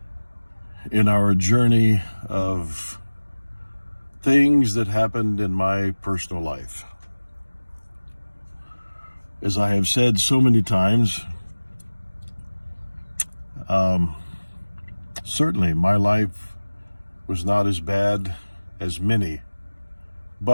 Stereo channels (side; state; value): both; inverted; correlation -1.00